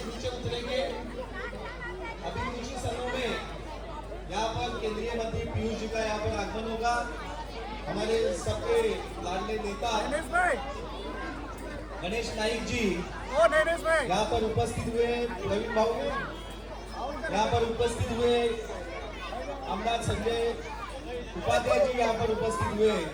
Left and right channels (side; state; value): both; identical; correlation 1.00